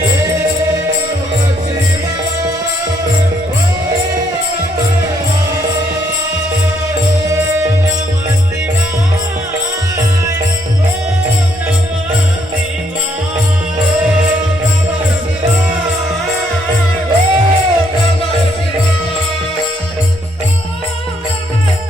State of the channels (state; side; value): normal; both; correlation 0.71